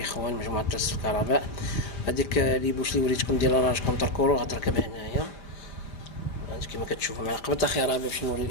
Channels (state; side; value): late; right; 5.0 ms